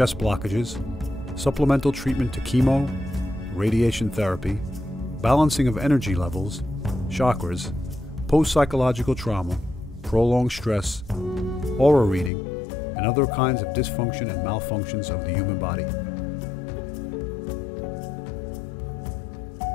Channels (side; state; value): right; drops out; at 12.3 s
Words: blockages, supplemental treatment to chemo, radiation therapy, balancing of energy levels, chakras, post-psychological trauma, prolonged stress, aura reading, and other kinds of dysfunction and malfunctions of the human body. I'm trying to create an open